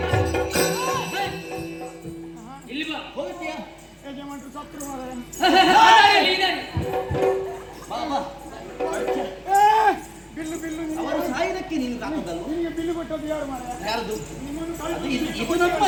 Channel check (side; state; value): both; identical; correlation 1.00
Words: ಅವರು ಸಾಯುವುದಕ್ಕೆ ನೀನು ಕಾಕದಲ್ಲ. ಬಿಲ್ಲು ಕೊಟ್ಟದ್ದು ಯಾರು? ಯಾರದು? ಇದು